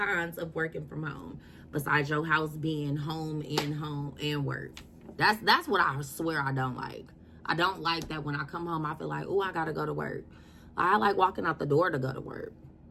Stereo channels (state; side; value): identical; both; correlation 1.00